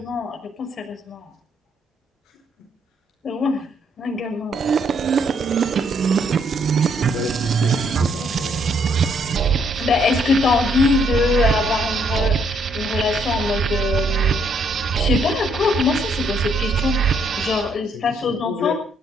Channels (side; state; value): both; normal; correlation 0.70